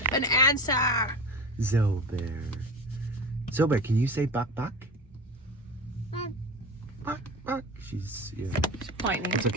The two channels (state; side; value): normal; both; correlation 0.30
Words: an answer. Zobear, can you say Buck? Buck. She's pointing. It's